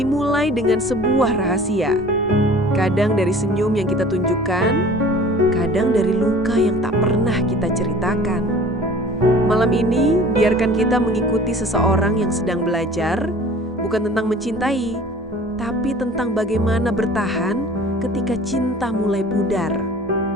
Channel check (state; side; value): normal; both; correlation 0.46